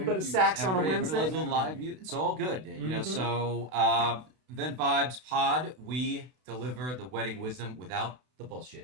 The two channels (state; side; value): late; left; 32 ms